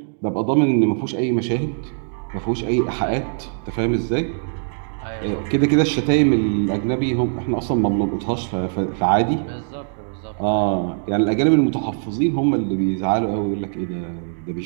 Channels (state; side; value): silent; left; digital silence